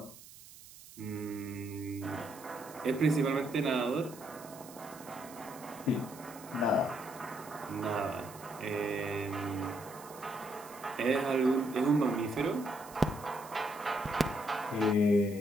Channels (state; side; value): noise; right; hiss, 18 dB below the sound